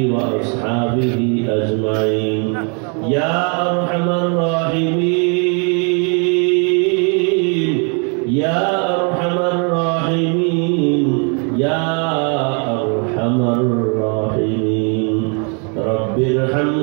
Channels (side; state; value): left; quieter; 37.4 dB